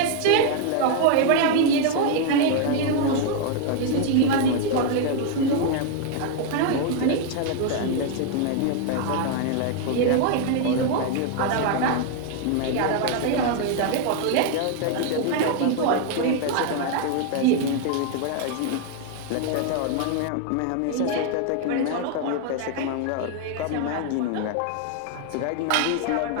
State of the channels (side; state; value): both; different; correlation 0.00